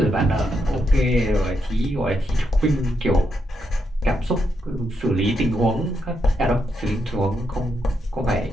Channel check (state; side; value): normal; both; correlation 0.81